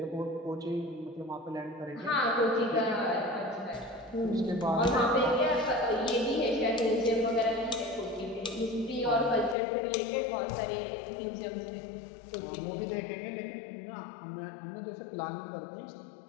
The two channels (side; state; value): right; drops out; at 9.6 s